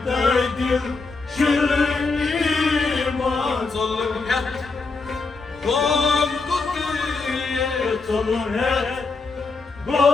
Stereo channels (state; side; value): quieter; right; 4.1 dB